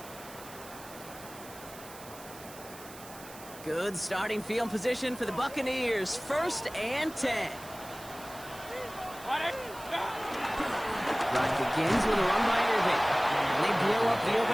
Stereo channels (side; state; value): right; noise; hiss, 17 dB below the sound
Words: Good starting field position for the Buccaneers. First and 10. Drive begins with a run by Irving. And they blow up the